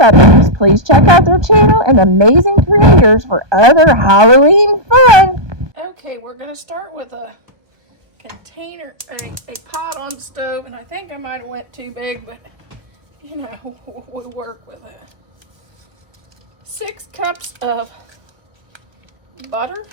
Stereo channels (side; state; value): left; late; 1.2 ms